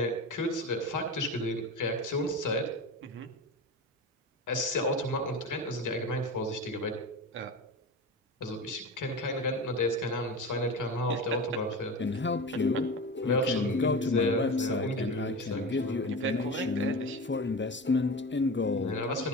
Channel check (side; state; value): both; normal; correlation 0.28